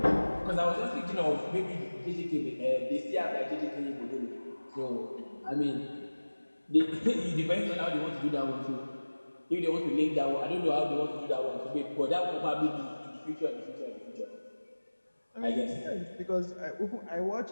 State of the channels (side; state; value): both; inverted; correlation -1.00